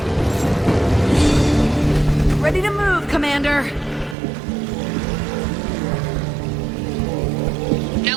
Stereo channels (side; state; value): left; drops out; at 4.2 s